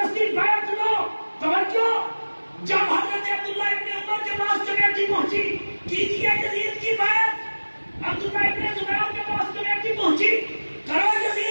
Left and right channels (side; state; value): both; inverted; correlation -1.00